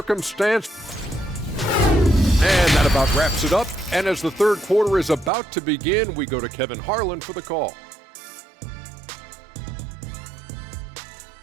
And that about wraps it up. And as the third quarter is about to begin, we go to Kevin Harlan for the call.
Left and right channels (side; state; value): left; drops out; at 5.3 s